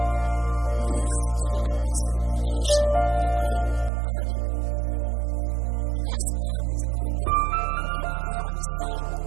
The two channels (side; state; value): left; drops out; at 3.9 s